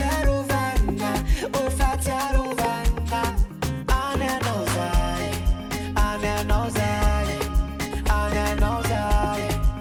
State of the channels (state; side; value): identical; both; correlation 1.00